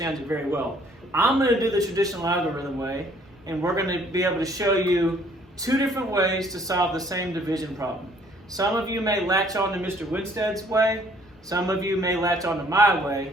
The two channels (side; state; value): both; normal; correlation 0.60